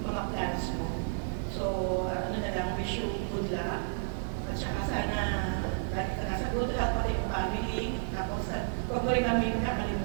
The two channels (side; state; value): left; silent; digital silence